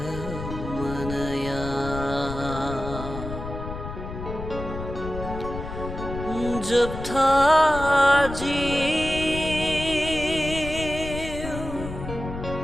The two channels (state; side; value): noise; left; rumble, 8 dB below the sound